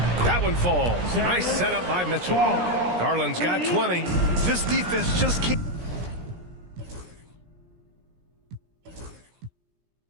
That one falls. Nice setup by Mitchell. Garland's got 20. This defense just can't.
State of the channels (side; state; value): left; late; 17 ms